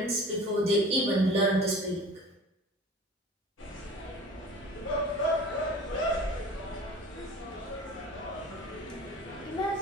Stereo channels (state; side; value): normal; both; correlation 0.41